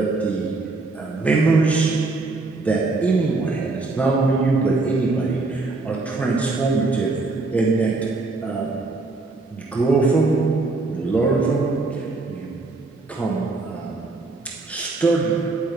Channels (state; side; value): quieter; left; 3.5 dB